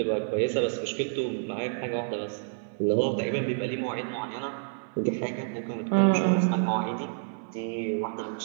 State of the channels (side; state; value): left; silent; 59 dB below the other